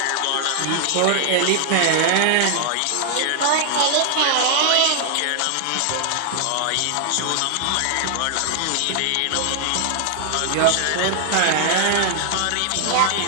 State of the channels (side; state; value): both; different; correlation 0.00